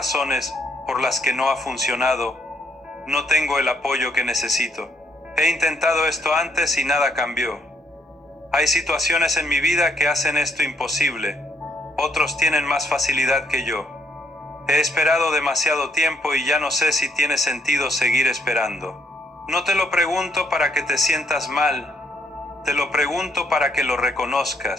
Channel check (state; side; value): normal; both; correlation 0.71